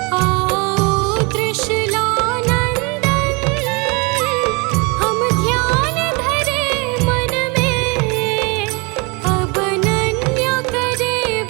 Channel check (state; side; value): quieter; left; 29.4 dB